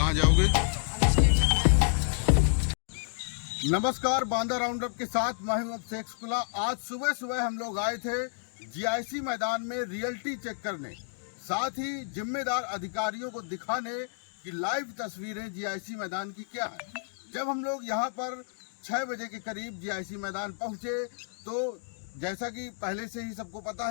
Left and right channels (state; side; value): silent; right; digital silence